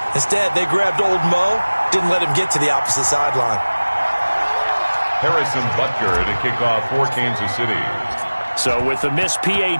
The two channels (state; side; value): inverted; both; correlation -1.00